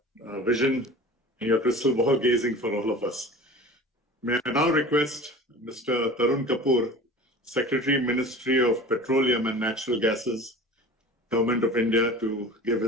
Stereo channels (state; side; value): normal; both; correlation 0.38